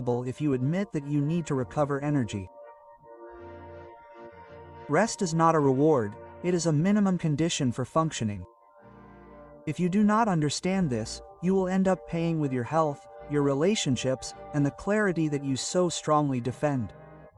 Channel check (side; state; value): both; identical; correlation 1.00